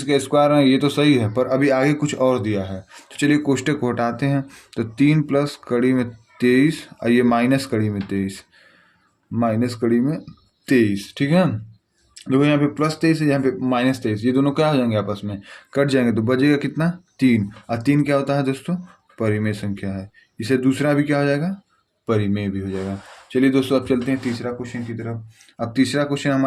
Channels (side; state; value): both; identical; correlation 1.00